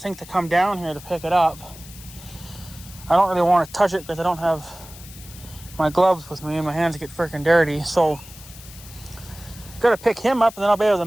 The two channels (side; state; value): left; noise; hiss, 18 dB below the sound